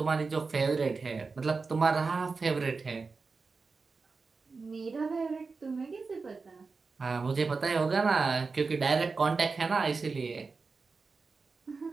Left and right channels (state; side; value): quieter; left; 4.4 dB